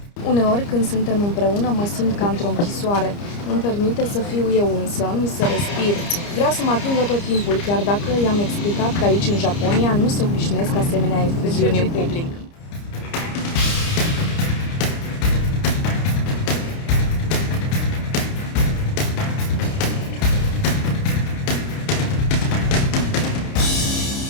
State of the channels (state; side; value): late; right; 30 ms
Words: Uneori, când suntem împreună, mă simt ca într-o închisoare. Nu-mi permite să fiu eu însămi, să respir. Vrea să mă atingă tot timpul, chiar dacă i-am explicat că aici, în Japonia, nu se obișnuiesc asemenea efuziuni în public.